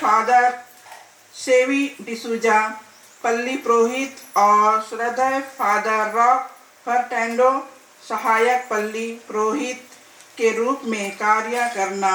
सेवी डिसूजा पल्ली पुरोहित और श्रद्धेय फादर रॉक फर्टेंडो सहायक पल्ली पुरोहित के रूप में कार्य करना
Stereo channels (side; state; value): both; identical; correlation 1.00